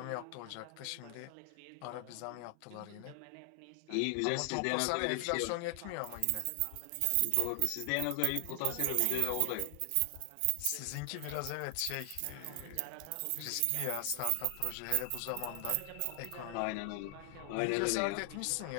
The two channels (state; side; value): different; both; correlation 0.00